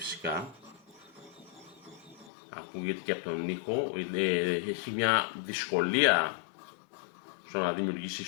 Ακούγεται και από τον ήχο. Έχει μια δυσκολία στο να δημιουργήσει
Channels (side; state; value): right; drops out; at 2.3 s